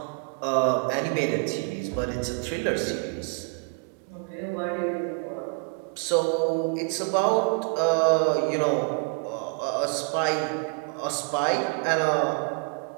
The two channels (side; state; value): left; quieter; 38.5 dB